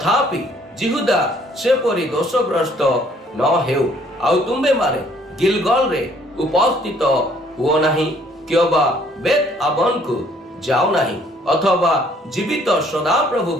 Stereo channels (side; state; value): both; normal; correlation 0.62